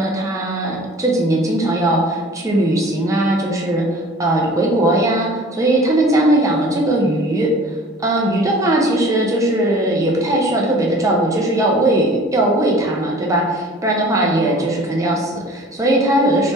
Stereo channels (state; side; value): normal; both; correlation 0.46